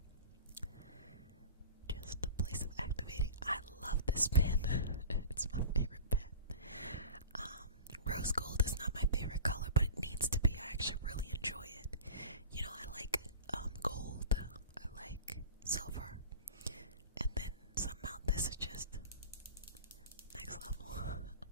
Just a place of activating. I love this pen. It's my favorite pen. Rose gold is not my favorite color, but it needs to be. I actually really enjoy it. I like gold. I like silver. And then somehow this is just next level.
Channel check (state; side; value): inverted; both; correlation -0.35